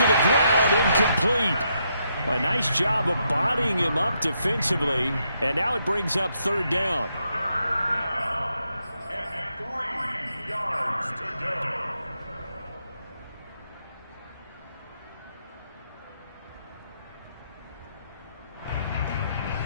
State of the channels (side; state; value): both; inverted; correlation -0.78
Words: the ground, incomplete. Well, a nice job of bodying him up defensively. And now it brings up 3rd down. And 3 yards to go.